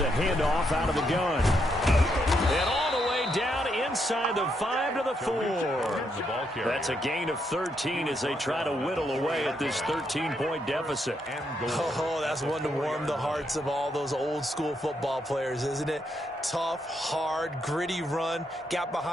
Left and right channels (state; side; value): normal; both; correlation 0.78